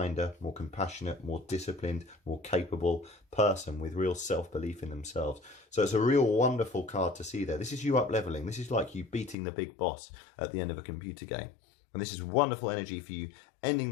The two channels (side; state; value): right; drops out; at 9.3 s